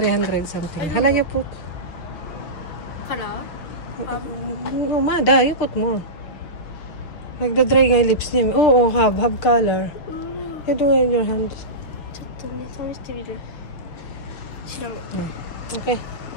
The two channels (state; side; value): late; right; 6.6 ms